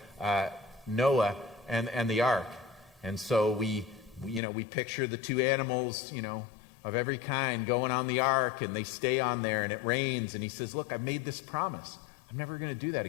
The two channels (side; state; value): right; drops out; at 4.4 s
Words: Noah and the ark. And so we picture the two animals, of every kind going on the ark, and they stay on there, and it rains, and he says, look, I've made this promise. I'm never going to do that